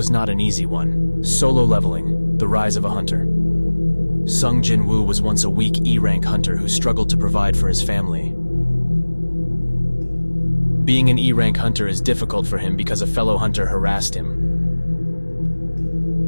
not an easy one. Solo leveling, the rise of a hunter. Sung Jin-Woo was once a weak E-rank hunter who struggled to provide for his family. Being an E-rank hunter is difficult for him because a fellow hunter harassed him.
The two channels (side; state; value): both; inverted; correlation -1.00